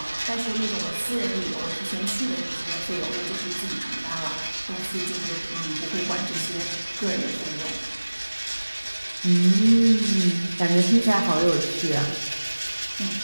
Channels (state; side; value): inverted; both; correlation -1.00